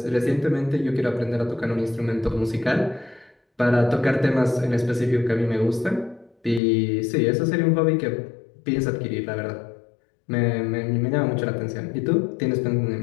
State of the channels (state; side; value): drops out; right; at 6.6 s